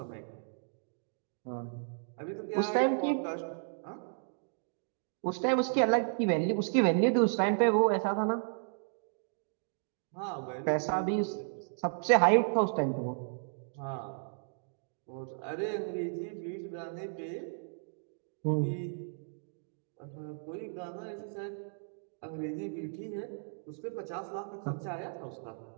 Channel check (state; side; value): silent; left; digital silence